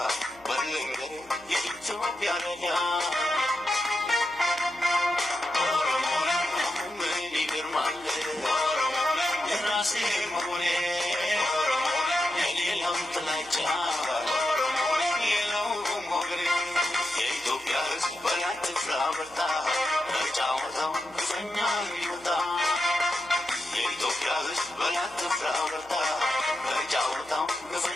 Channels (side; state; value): right; noise; hum, 26 dB below the sound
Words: በልንገር የኢትዮጵያ ረዳ ኦሮሞን ምን ይገርማል የራሴ መሆኔ የሌላው ጥላቻ የለው ሞገሬ የኢትዮጵያ ሕዝብ በላት ፍራ በርታ ተጫወተው ግፈኛ ይወጣ የኢትዮጵያ ሕዝብ በላት ፍራ በርታ ተጫወተው